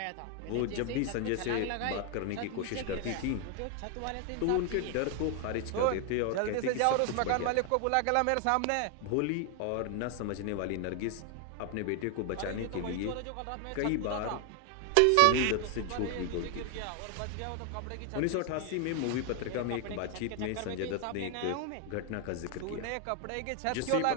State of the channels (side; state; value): both; different; correlation 0.00